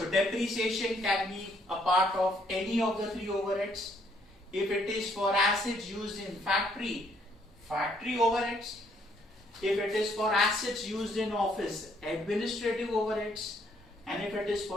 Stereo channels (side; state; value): both; normal; correlation 0.68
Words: depreciation can be a part of any of the three overheads. If it is for assets used in factory, factory overheads. If it is for assets used in office, administrative overheads. And if it is